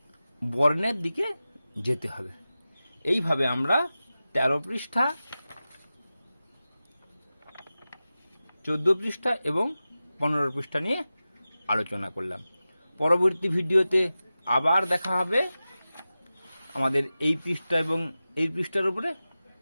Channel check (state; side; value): inverted; both; correlation -0.95